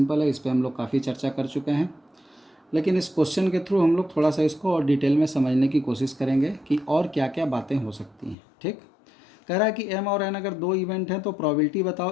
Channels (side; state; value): right; drops out; at 8.3 s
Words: है, इस पर हम लोग काफ़ी चर्चा कर चुके हैं, लेकिन इस क्वेश्चन के थ्रू हम लोग थोड़ा सा इसको और डिटेल में समझने की कोशिश करेंगे कि और क्या क्या बातें हो सकती हैं। ठीक, कह रहा है कि एम और एन अगर दो इवेंट हैं तो प्रोबेबिलिटी